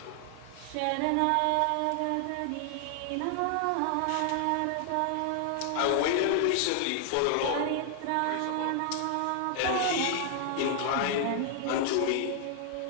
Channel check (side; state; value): both; different; correlation 0.00